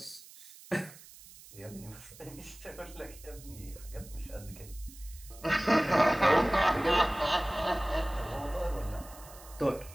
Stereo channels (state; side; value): noise; right; hiss, 19 dB below the sound